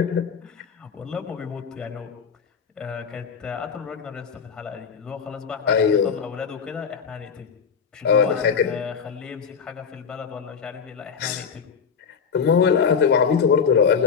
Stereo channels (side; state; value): right; quieter; 6.4 dB